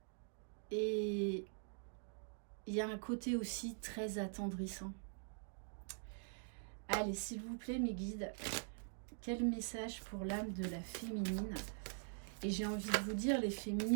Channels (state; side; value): silent; left; digital silence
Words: Et il y a un côté aussi très attendrissant. Allez, s'il vous plaît, mes guides, Quel message pour l'âme de la féminine? Et j'ai envie de vous dire, les